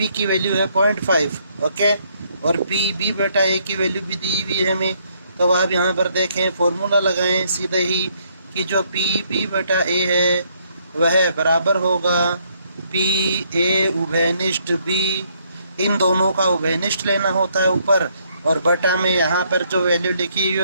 की वैल्यू है 0.5। ओके, और पी बी बेटा ए की वैल्यू भी दी हुई है हमें। तो आप यहाँ पर देखें, फॉर्मूला लगाएं सीधे ही कि जो पी बी बेटा ए है वह बराबर होगा पी ए उभयनिष्ठ बी। इन दोनों का उभयनिष्ठ लेना होता है ऊपर, और बटा में यहाँ पर जो वैल्यू लिखी हुई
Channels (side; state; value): both; inverted; correlation -0.70